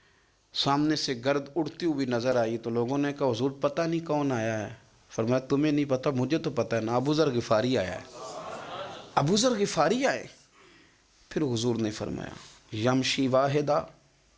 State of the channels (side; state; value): both; identical; correlation 1.00